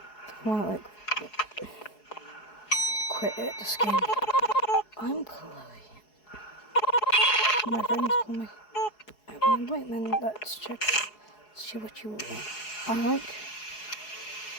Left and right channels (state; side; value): late; right; 4.7 ms